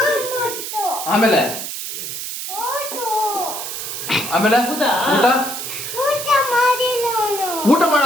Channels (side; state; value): right; noise; hiss, 6 dB below the sound